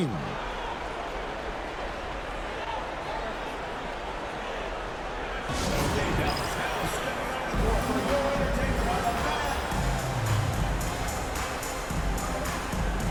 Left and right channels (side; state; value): both; identical; correlation 1.00